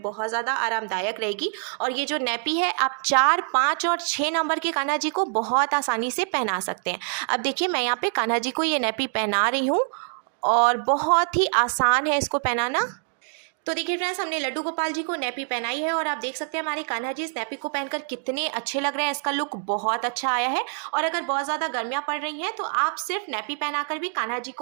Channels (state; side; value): silent; left; 56 dB below the other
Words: बहुत ज़्यादा आरामदायक रहेगी। और ये जो नैपी है, आप 4, 5 और 6 नंबर के कान्हा जी को बहुत आसानी से पहना सकते हैं। अब देखिए, मैं यहाँ पे कान्हा जी को ये नैपी पहना रही हूँ और बहुत ही आसान है इसको पहनाना। तो देखिए फ्रेंड्स, हमने लड्डू गोपाल जी को नैपी पहनाई है और आप देख सकते हैं हमारे कान्हा जी इस नैपी को पहनकर कितने अच्छे लग रहे हैं। इसका लुक बहुत अच्छा आया है। और अगर बहुत ज़्यादा गर्मियाँ पड़ रही हैं तो आप सिर्फ नैपी पहनाकर भी कान्हा जी